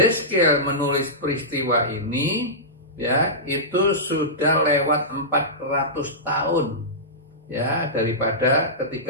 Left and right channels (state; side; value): normal; both; correlation -0.16